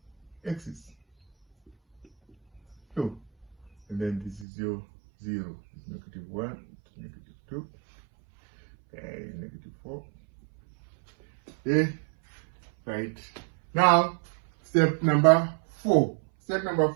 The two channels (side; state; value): left; drops out; at 4.5 s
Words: axis. So, and then this is your 0. It's negative 1 to negative 2. Okay, negative 4. Okay, right. Now, step number 4. Step number